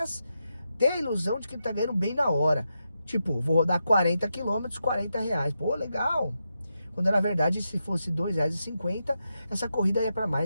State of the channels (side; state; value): both; inverted; correlation -0.86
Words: ter a ilusão de que ele tá ganhando bem na hora. Tipo, vou rodar 40 quilômetros, 40 reais. Pô, legal. Quando na verdade, se fosse R$2,50, essa corrida ia para